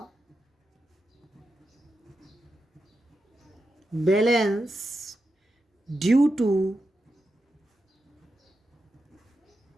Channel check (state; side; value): normal; both; correlation 0.88